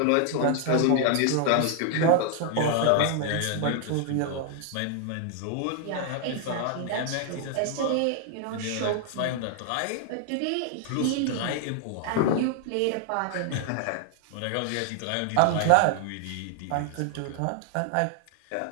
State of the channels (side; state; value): both; different; correlation 0.00